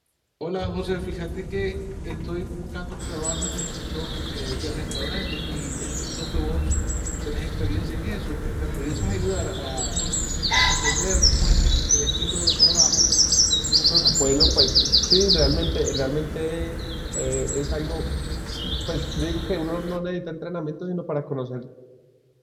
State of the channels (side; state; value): both; identical; correlation 1.00